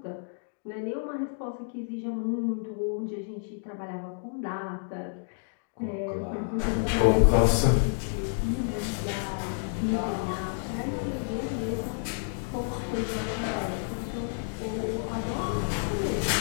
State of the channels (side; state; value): right; silent; digital silence